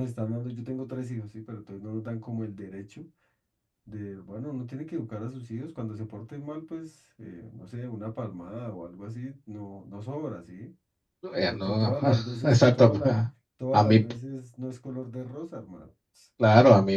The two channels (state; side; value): identical; both; correlation 1.00